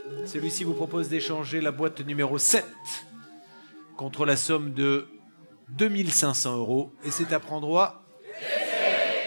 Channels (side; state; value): both; inverted; correlation -1.00